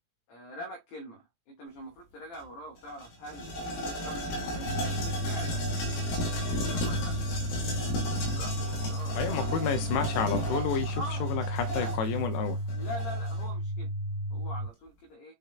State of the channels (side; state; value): right; late; 18 ms